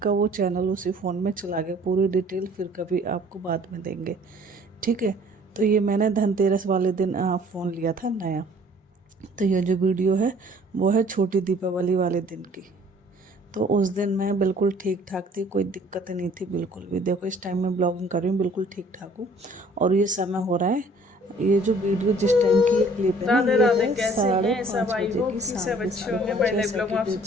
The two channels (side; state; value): both; normal; correlation 0.55